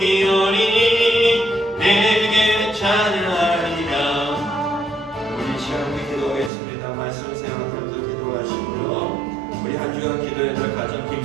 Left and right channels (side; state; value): left; drops out; at 6.5 s